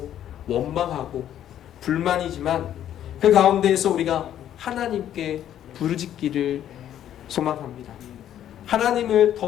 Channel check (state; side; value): quieter; right; 11.0 dB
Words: 원망하고 불만이지만 그 가운데에서 우리가 하나님께 부르짖기를 소망합니다. 하나님을